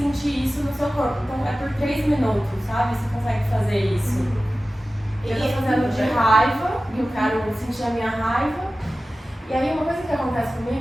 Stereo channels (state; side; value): normal; both; correlation 0.96